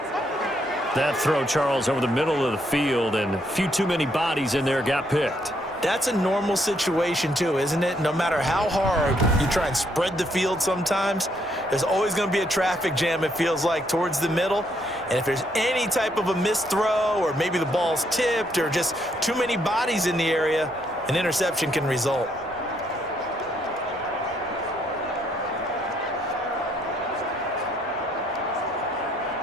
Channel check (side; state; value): both; normal; correlation 0.72